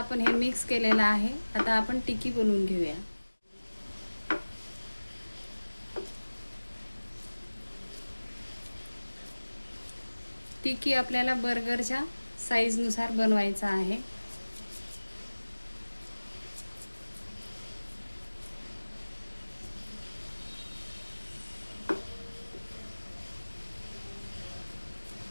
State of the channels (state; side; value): inverted; both; correlation -1.00